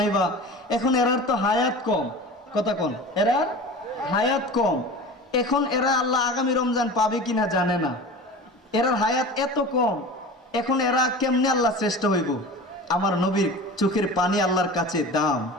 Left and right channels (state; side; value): normal; both; correlation 0.35